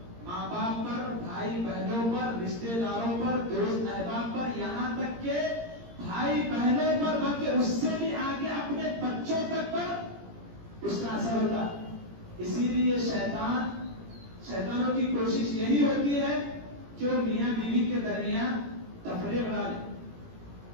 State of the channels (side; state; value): left; late; 17 ms